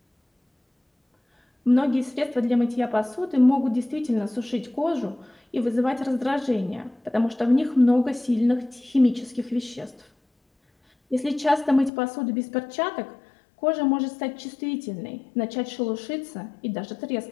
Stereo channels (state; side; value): drops out; right; at 11.9 s